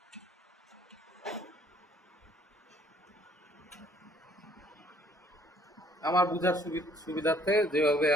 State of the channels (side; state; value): both; normal; correlation 0.61